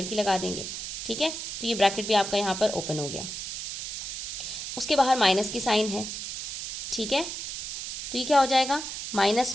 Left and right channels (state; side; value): noise; right; hiss, 6 dB below the sound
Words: की लगा देंगे, ठीक है। तो ये ब्रैकेट भी आपका यहाँ पर ओपन हो गया। उसके बाहर माइनस की साइन है, ठीक है। तो ये क्या हो जाएगा, माइनस